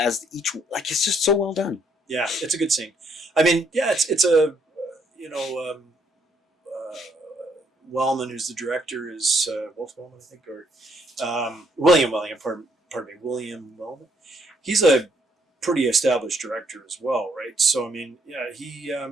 each, like, it's just so well done. Yeah, it's a good scene. I mean, it's a, you know. Wellman, who's the director, is Wolf Wellman, I think, or William Wellman. Pardon me, William Wellman. He's a pretty established director as well, right? So I mean, he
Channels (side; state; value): both; normal; correlation 0.70